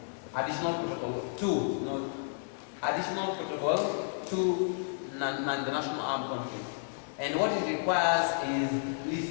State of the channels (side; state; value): right; silent; digital silence